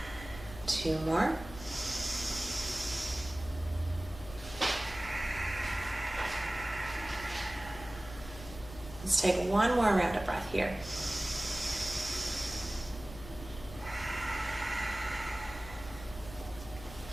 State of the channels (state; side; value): noise; left; hum, 14 dB below the sound